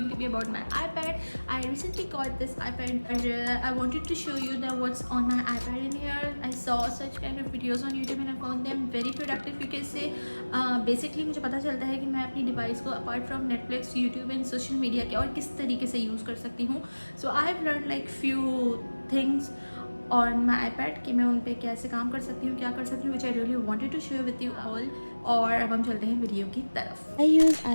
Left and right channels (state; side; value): inverted; both; correlation -1.00